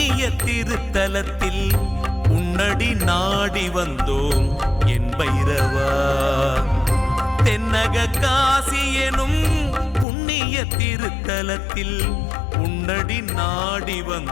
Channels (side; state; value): right; drops out; at 10.1 s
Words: திருத்தலத்தில் உன்னடி நாடி வந்தோம் என் பைரவா. தென்னக காசி எனும் புண்ணிய திருத்தலத்தில் உன்னடி நாடி